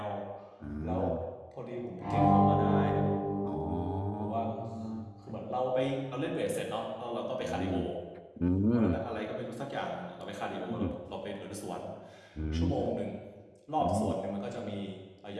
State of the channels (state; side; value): identical; both; correlation 1.00